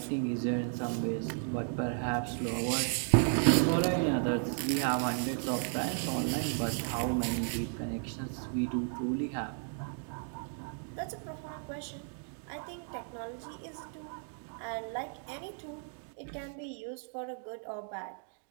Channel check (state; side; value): silent; left; 55 dB below the other